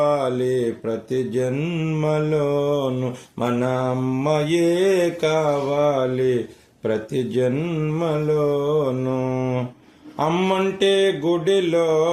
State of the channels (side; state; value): both; identical; correlation 1.00